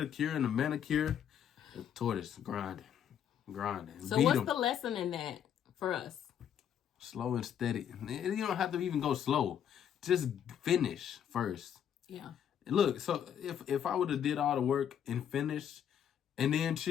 and a manicure. The tortoise grinding. So what's the lesson in that for us? Slow and steady. You don't have to even go slow. Just finish first. Yeah. Look, so if I would have did all the work and finished and then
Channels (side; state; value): right; quieter; 9.2 dB